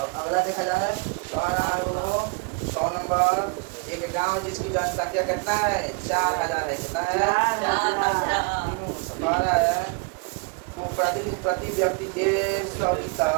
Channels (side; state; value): left; quieter; 31.9 dB